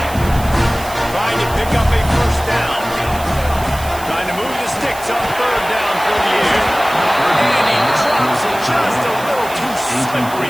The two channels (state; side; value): noise; right; hiss, 14 dB below the sound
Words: Trying to pick up a first down. Trying to move the sticks on 3rd down for the air. And he drops it just a little too slippery